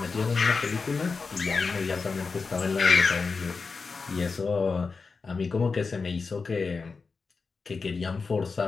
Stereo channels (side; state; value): right; quieter; 4.7 dB